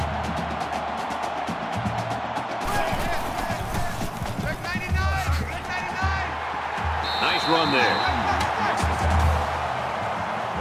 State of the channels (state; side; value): identical; both; correlation 1.00